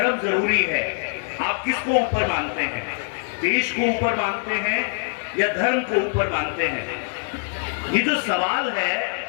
जरूरी है, आप किसको ऊपर मानते हैं? देश को ऊपर मानते हैं या धर्म को ऊपर मानते हैं? ये जो सवाल है,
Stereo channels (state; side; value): silent; right; 58 dB below the other